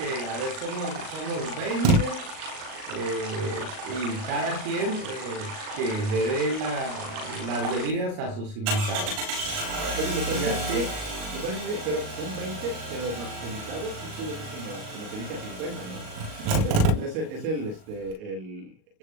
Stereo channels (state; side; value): late; left; 38 ms